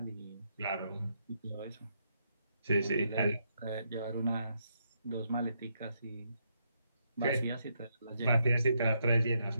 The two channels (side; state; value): both; inverted; correlation -0.78